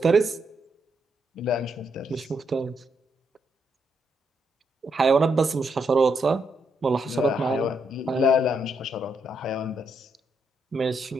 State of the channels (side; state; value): both; normal; correlation 0.78